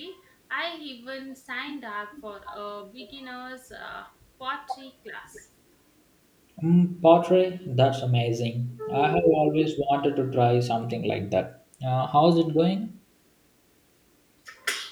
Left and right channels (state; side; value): identical; both; correlation 1.00